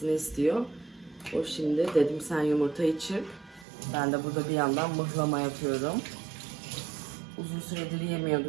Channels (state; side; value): drops out; left; at 3.7 s